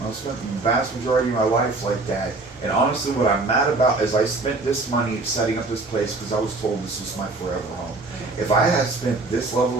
I spent the vast majority of my life like that. And honestly, what I'm mad about is I spent this money setting up this place because I was told this was my forever home. If I had spent this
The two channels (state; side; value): quieter; left; 3.3 dB